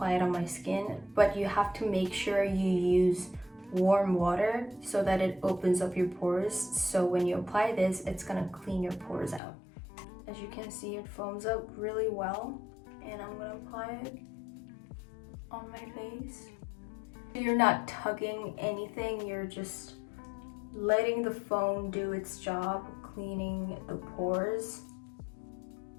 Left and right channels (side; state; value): right; drops out; at 9.4 s